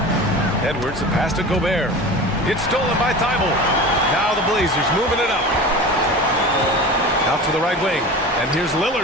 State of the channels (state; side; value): normal; both; correlation 0.33